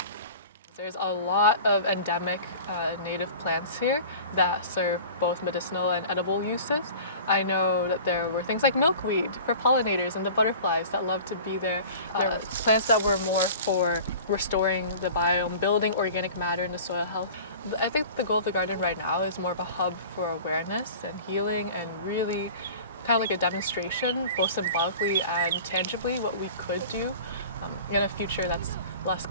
There's a lot of endemic native plants here that serve both medicinal and edible uses. I know that there were things like milkweed for pollinators and the butterflies that love to be there. There were plants that were more for restoring the biome, building organic matter into soil health. I think the goal of the garden right now is more of a hub for awareness and healing, and really kind of like a demonstration, both symbolically and tangibly, what we could do in a future that's less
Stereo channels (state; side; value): inverted; both; correlation -0.41